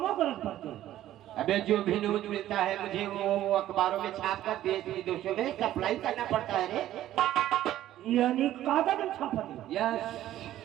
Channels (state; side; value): quieter; left; 13.2 dB